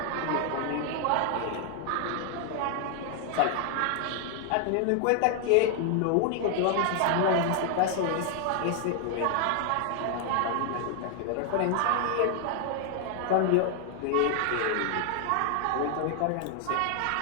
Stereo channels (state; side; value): different; both; correlation 0.00